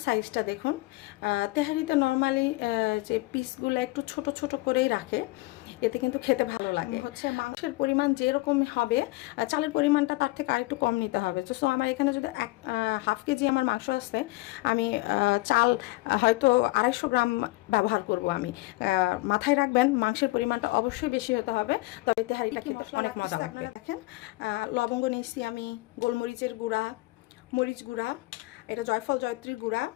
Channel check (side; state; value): right; quieter; 22.0 dB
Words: সাইজটা দেখুন। তেহারিতে নর্মালি যে পিসগুলো একটু ছোট ছোট করেই রাখে, এতে কিন্তু খেতে ভালো লাগে। হচ্ছে মাংসের পরিমাণ যেরকম হবে, চালের পরিমাণটা তার থেকে আরেকটু কম নিতে হবে। তো আমার এখানে যদি হাফ কেজি আমার মাংস আসছে, আমি চাল হয়তো 250 গ্রাম ব্যবহার করব। আমি মাথায় রাখবেন মাংসের পরিমাণটা অবশ্যই বেশি হতে হবে, তবে তেহারিটা খেতে অনেক মজা লাগবে। দেখেন লবঙ্গ নিয়েছি আমি, গোলমরিচের গুঁড়া, মরিচ গুঁড়া, এটা জয়ফল জয়ত্রীর গুঁড়া,